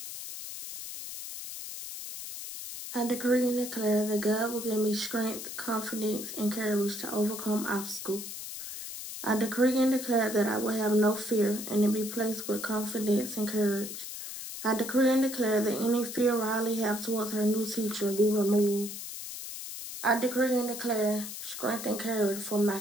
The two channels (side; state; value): left; noise; hiss, 9 dB below the sound